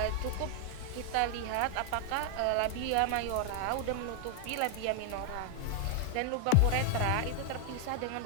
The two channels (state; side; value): different; both; correlation 0.00